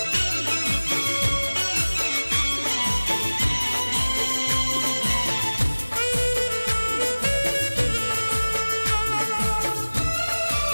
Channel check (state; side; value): inverted; both; correlation -1.00